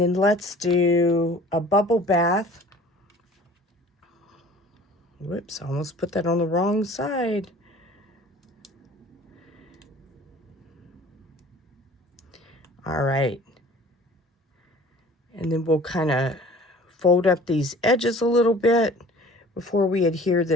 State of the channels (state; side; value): normal; both; correlation 0.47